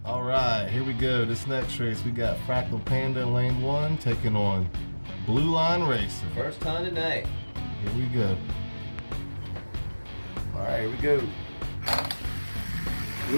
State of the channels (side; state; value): both; inverted; correlation -1.00